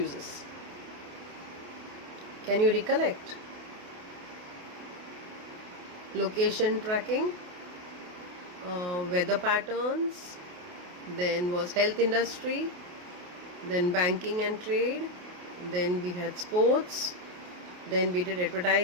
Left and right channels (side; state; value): left; late; 28 ms